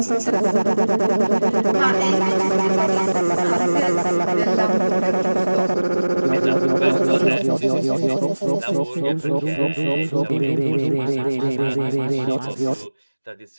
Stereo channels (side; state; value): both; inverted; correlation -1.00